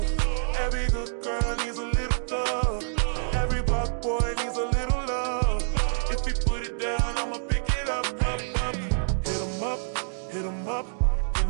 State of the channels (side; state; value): left; silent; digital silence